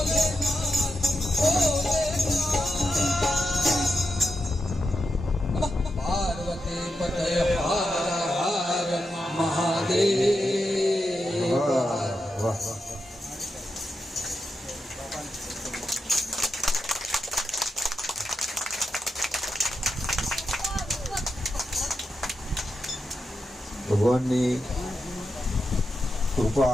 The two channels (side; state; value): both; normal; correlation 0.87